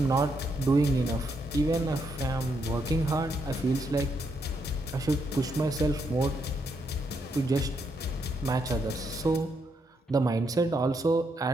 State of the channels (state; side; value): normal; both; correlation 0.78